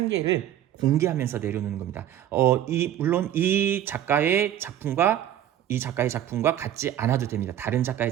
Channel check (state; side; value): quieter; left; 11.5 dB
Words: 개를 공개하면서 내려놓는 겁니다. 물론 이 작가의 작품과 같지 않아도 됩니다. 다른 작가의